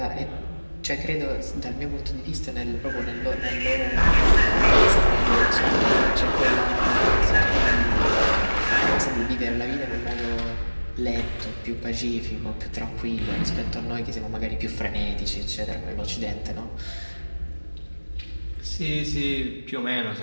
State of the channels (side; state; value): both; inverted; correlation -1.00